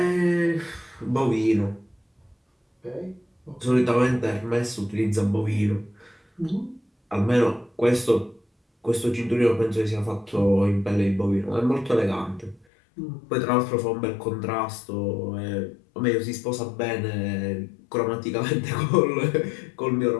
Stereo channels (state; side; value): drops out; right; at 12.7 s